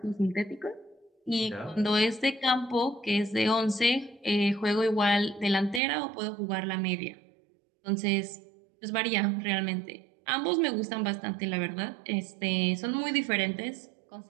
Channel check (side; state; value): left; drops out; at 5.8 s